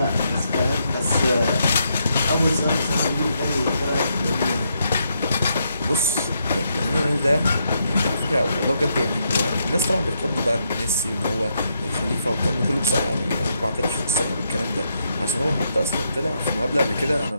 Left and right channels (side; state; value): both; inverted; correlation -0.78